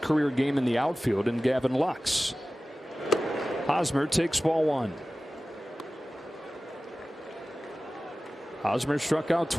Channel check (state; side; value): normal; both; correlation 0.96